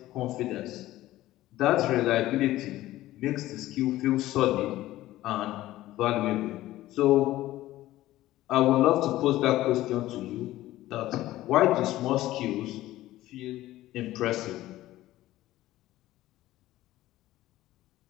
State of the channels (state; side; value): quieter; right; 15.5 dB